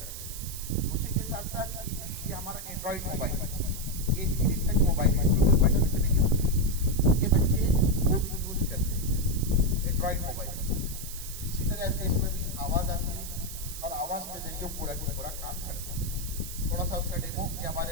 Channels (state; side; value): noise; right; hiss, 10 dB below the sound